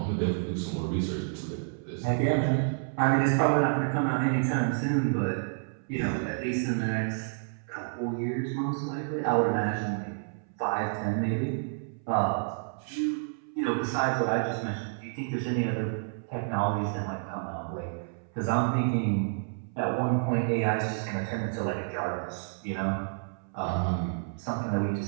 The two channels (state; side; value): silent; left; 58 dB below the other